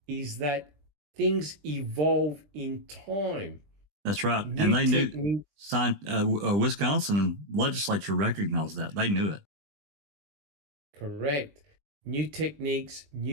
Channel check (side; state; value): left; late; 20 ms